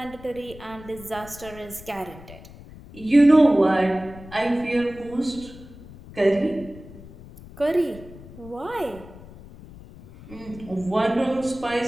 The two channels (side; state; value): left; noise; rumble, 18 dB below the sound